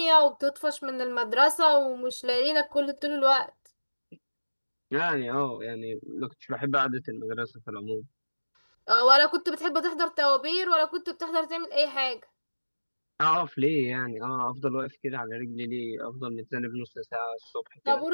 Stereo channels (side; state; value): both; inverted; correlation -1.00